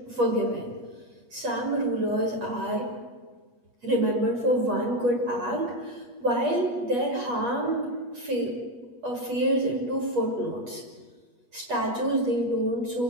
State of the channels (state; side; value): late; left; 8.3 ms